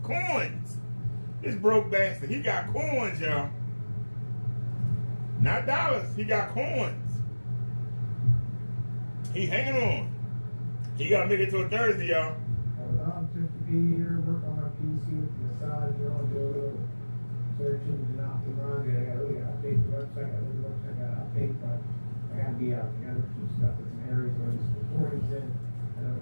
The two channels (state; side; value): inverted; both; correlation -1.00